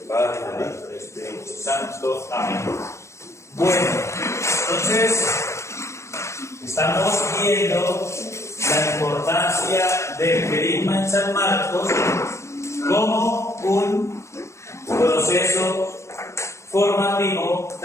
Padre, del Hijo, del Espíritu Santo. Amén. Bueno, entonces estamos viendo la importancia del querigma en San Marcos como un proceso formativo,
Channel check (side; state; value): right; late; 0.14 ms